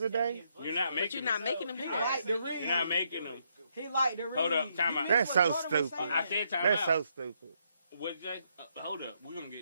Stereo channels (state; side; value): inverted; both; correlation -0.75